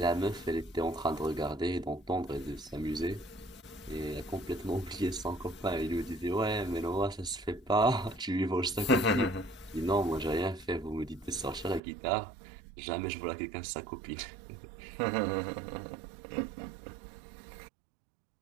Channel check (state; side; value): drops out; left; at 11.8 s